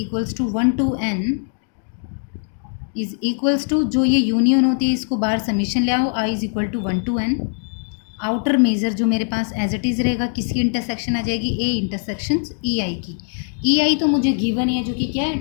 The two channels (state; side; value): silent; right; 65 dB below the other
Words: to 1 to n is equals to, जो ये यूनियन होती है इसको बाहर समीशन ले आओ, I is equal to 1 to n। Outer measure जो मेरे पास एज इट इज़ रहेगा, किसकी इंटरसेक्शन आ जाएगी, ए इंटरसेक्शन ई आई की। ई आई तो मुझे गिवन है, जो कि क्या है,